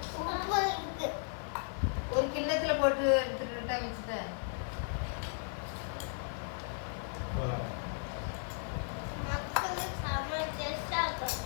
ஒரு கிண்ணத்துல போட்டு எடுத்துக்கிட்டா மிச்சத்தை.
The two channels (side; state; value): right; silent; 54 dB below the other